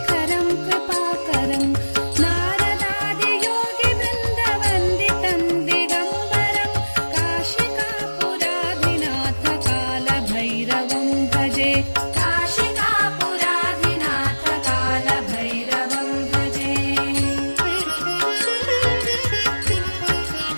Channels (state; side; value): inverted; both; correlation -1.00